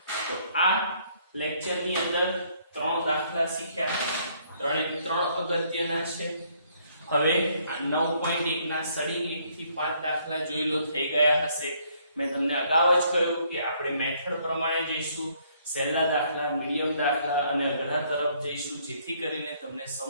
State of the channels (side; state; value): both; inverted; correlation -0.66